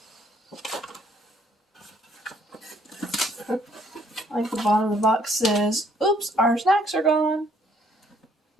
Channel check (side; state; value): both; normal; correlation 0.65